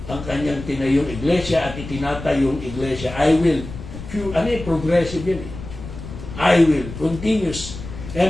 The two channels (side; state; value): left; noise; rumble, 11 dB below the sound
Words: ang kanyang tinayong iglesia at itinatayong iglesia. I will. Progressive yun eh. I will. Continuous.